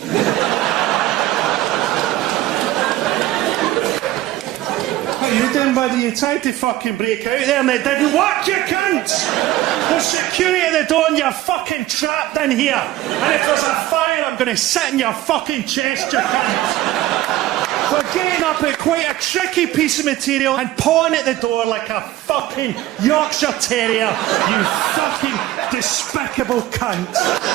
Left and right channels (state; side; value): quieter; left; 15.4 dB